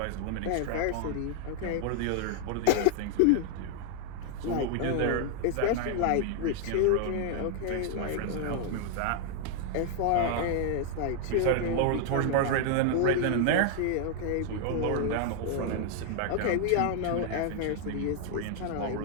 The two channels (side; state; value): both; different; correlation 0.00